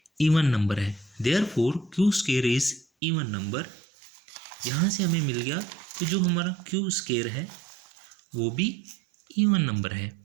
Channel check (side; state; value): left; drops out; at 2.9 s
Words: इवन नंबर है, therefore Q square is even number. यहाँ से हमें मिल गया कि जो हमारा क्यू स्केयर है वो भी इवन नंबर है।